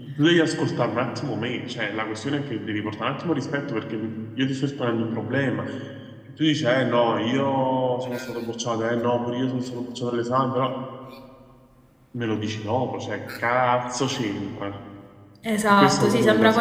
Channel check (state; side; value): identical; both; correlation 1.00